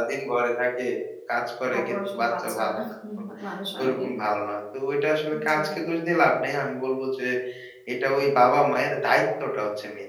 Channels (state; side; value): identical; both; correlation 1.00